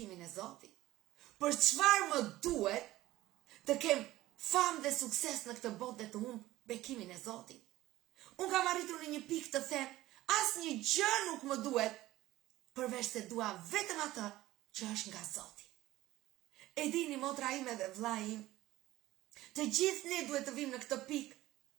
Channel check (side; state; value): left; quieter; 16.4 dB